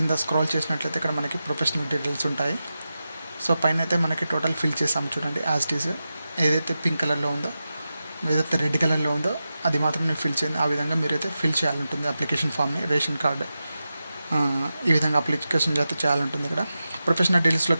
స్క్రాల్ చేసినట్లయితే ఇక్కడ మనకి ప్రొఫెషనల్ డీటెయిల్స్ ఉంటాయి. సో పైన అయితే మనకి టోటల్ ఫిల్ చేసాము చూడండి. యాజ్ ఇట్ ఈజ్ ఏదైతే పింక్ కలర్లో ఉందో, ఏదైతే రెడ్ కలర్లో ఉందో అది మాత్రం నేను ఫిల్ చేయండి. ఆ విధంగా మీరైతే ఫిల్ చేయాలంటుంది అప్లికేషన్ ఫామ్ని. రేషన్ కార్డు ఈ విధంగా అప్లికేషన్ అయితే చేయాలంటుంది. ఇక్కడ ప్రొఫెషనల్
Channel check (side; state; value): both; inverted; correlation -0.92